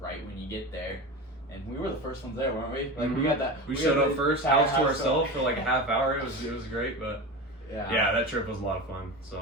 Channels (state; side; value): normal; both; correlation 0.26